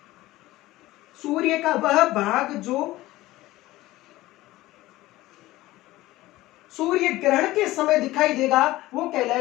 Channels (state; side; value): quieter; right; 17.4 dB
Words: सूर्य का वह भाग जो सूर्य ग्रहण के समय दिखाई देगा वो